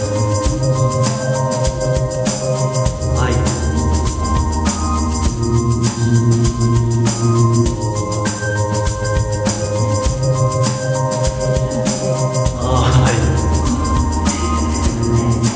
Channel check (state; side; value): identical; both; correlation 1.00